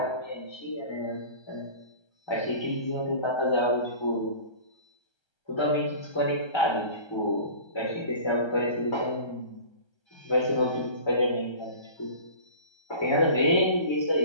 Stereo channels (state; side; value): late; right; 1.3 ms